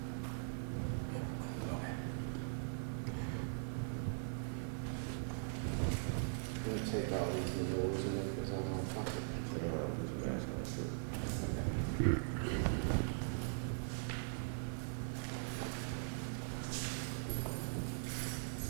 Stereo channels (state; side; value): silent; left; digital silence